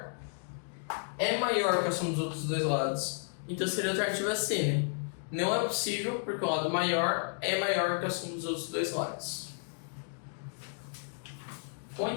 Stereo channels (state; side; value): silent; right; digital silence